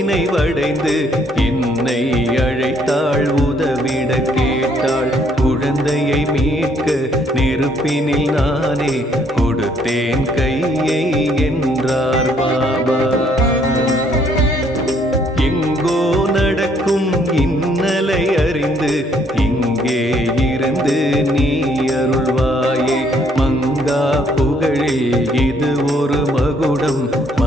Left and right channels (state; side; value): normal; both; correlation 0.66